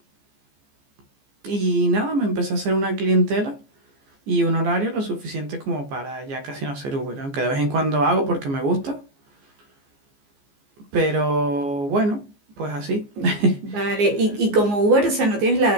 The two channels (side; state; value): left; late; 14 ms